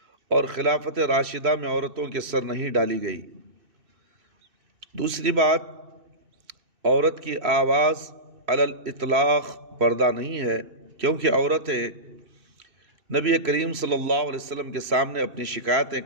اور خلافت راشدہ میں عورتوں کے سر نہیں ڈالی گئی۔ دوسری بات، عورت کی آواز علی الاطلاق پردہ نہیں ہے، کیونکہ عورتیں نبی کریم صلی اللہ علیہ وسلم کے سامنے اپنی شکایتیں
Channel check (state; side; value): late; left; 2.6 ms